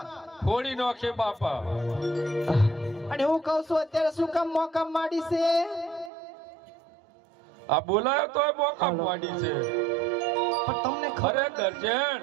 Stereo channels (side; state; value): left; drops out; at 6.1 s